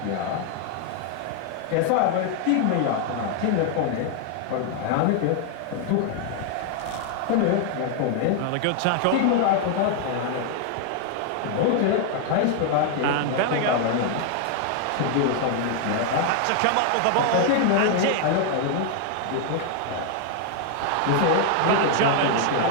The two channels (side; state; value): both; different; correlation 0.00